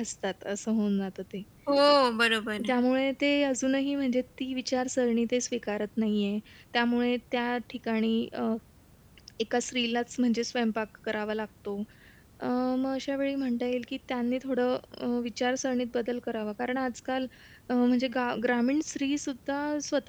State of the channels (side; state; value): both; identical; correlation 1.00